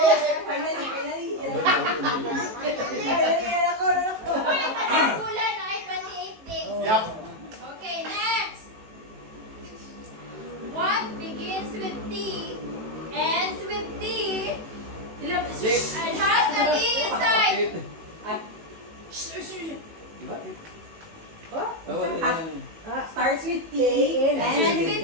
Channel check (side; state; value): left; late; 18 ms